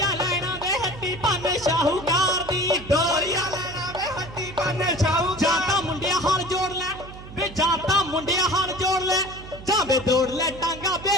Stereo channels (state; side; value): noise; right; hum, 15 dB below the sound